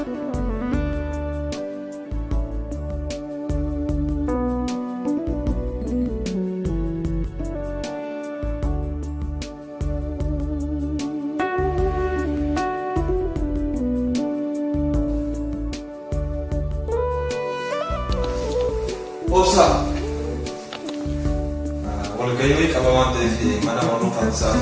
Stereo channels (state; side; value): identical; both; correlation 1.00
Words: Obsa. Walgahii qaba waan ta'eef mana barnootaa